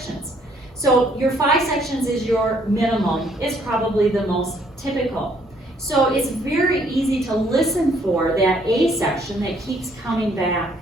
So your 5 sections is your minimum. It's probably the most typical. So it's very easy to listen for that A section that keeps coming back.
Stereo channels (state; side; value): normal; both; correlation 0.66